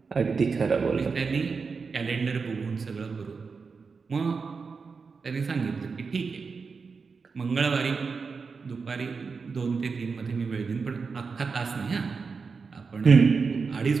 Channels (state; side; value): quieter; left; 5.0 dB